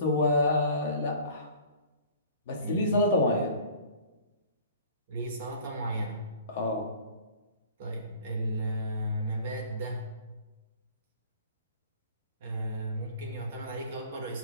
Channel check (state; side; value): inverted; both; correlation -0.48